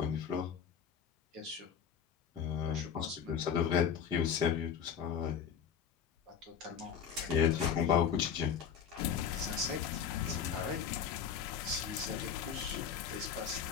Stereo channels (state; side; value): quieter; right; 7.7 dB